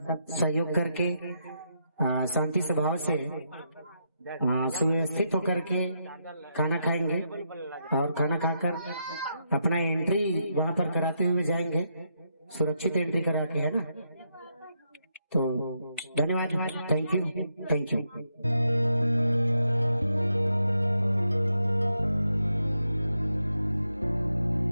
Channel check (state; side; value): inverted; both; correlation -0.81